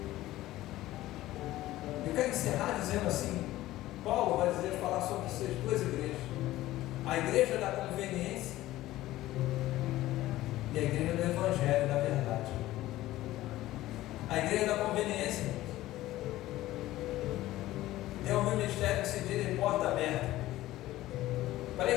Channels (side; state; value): right; quieter; 15.9 dB